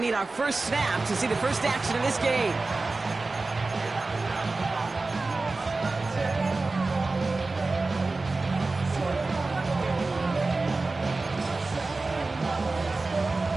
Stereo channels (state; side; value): quieter; left; 3.5 dB